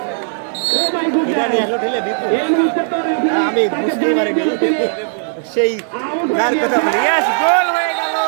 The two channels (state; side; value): silent; left; digital silence